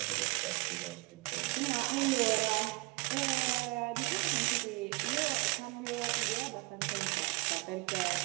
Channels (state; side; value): quieter; left; 26.8 dB